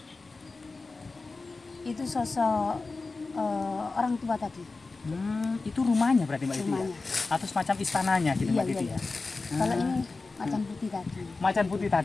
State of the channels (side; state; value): right; quieter; 3.8 dB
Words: Itu sosok orang tua tadi. Itu rumahnya berarti Mbak Titi ya? Rumahnya. Atau semacam istananya gitu Mbak Titi ya? Kalau ini macan putih tadi. Macan putih